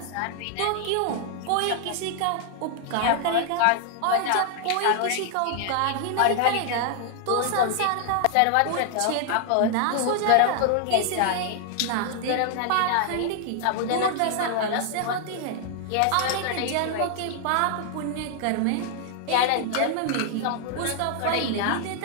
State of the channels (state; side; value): different; both; correlation 0.00